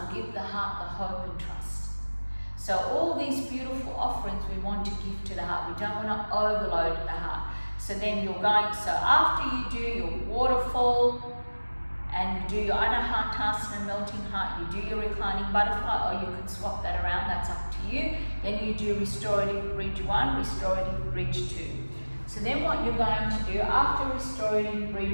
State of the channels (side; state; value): both; inverted; correlation -1.00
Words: give the heart the hope and trust. So all these beautiful offerings we want to give to the heart. We don't want to overload the heart. So then you're going, so after you do your waterfall and you do your Anahatasana melting heart, you do your reclining butterfly, or you can swap that around, that's up to you. Then you do restorative bridge 1, restorative bridge 2. So then what you're going to do after restorative